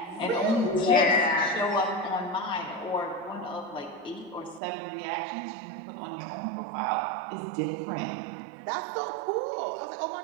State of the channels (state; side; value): drops out; left; at 4.6 s